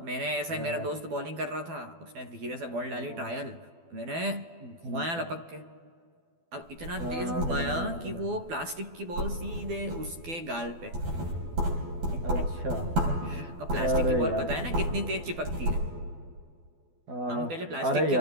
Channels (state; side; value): late; left; 12 ms